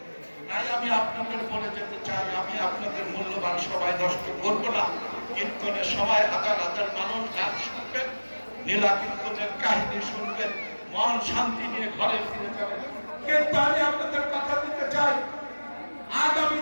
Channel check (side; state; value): both; inverted; correlation -1.00